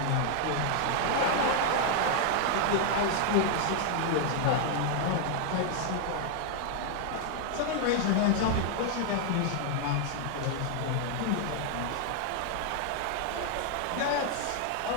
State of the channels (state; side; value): different; both; correlation 0.00